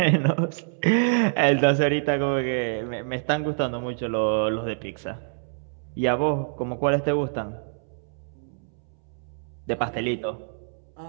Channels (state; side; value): silent; left; 61 dB below the other